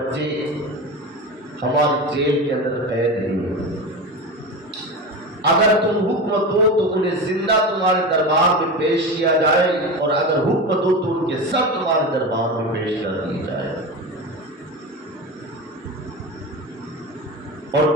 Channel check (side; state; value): both; normal; correlation 0.25